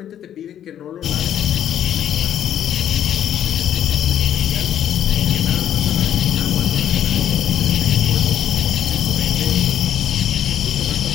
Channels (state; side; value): quieter; right; 10.4 dB